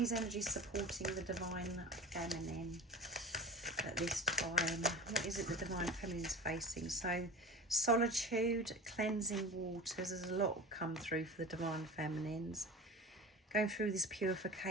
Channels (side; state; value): both; normal; correlation 0.32